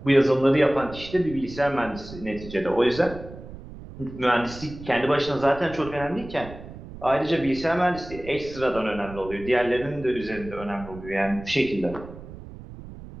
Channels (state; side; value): noise; right; rumble, 14 dB below the sound